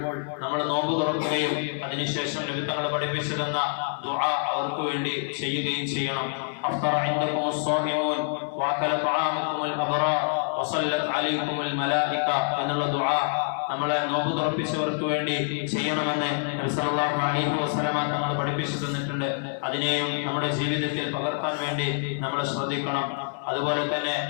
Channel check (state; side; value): silent; right; digital silence